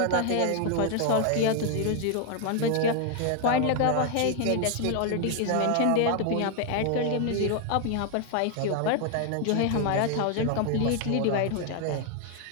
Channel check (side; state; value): both; different; correlation 0.00